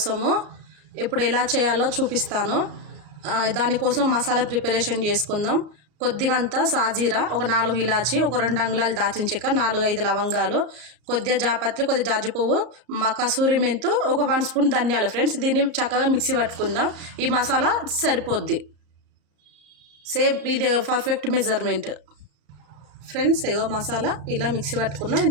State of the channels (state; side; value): late; left; 34 ms